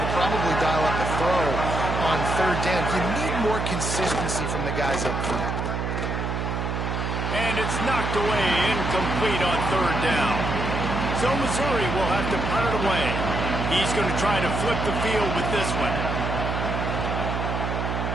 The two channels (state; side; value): noise; right; hum, 2 dB below the sound